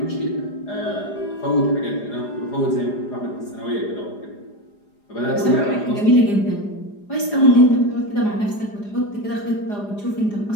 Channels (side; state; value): right; late; 4.9 ms